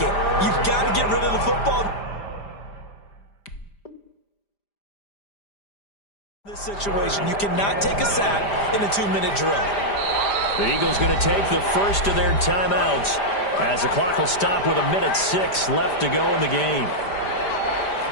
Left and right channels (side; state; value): right; late; 5.0 ms